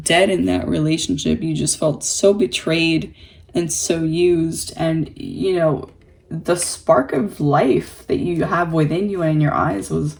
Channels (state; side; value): identical; both; correlation 1.00